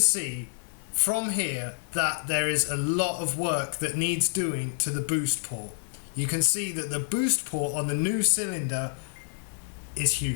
from here that there is a lot of work that needs doing to the boost port. You can see that the boost port on the new cylinder is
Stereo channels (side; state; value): right; silent; digital silence